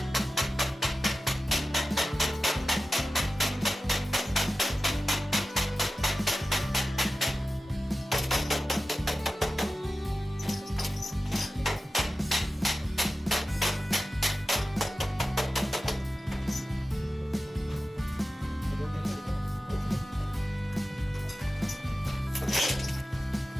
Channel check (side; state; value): both; normal; correlation 0.94